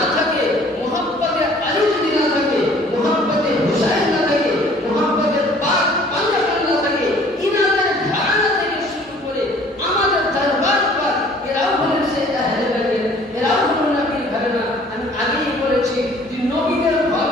থাকে, মুহাব্বতে আলী যদি না থাকে, মুহাব্বতে হুসাইন না থাকে, মুহাব্বতে পাক পাঞ্জাবি না থাকে, ইনাদের ধারণা থেকে শুরু করে আমাদের দরবার পর এরাও হলেন সে আহলে বাইত, এরাও হলেন নবীর ধারণা। আমি আগেই বলেছি যে নবীদের ঘর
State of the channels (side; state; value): both; normal; correlation 0.54